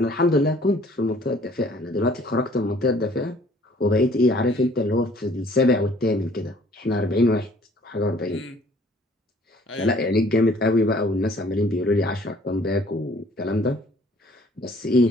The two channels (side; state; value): both; normal; correlation 0.57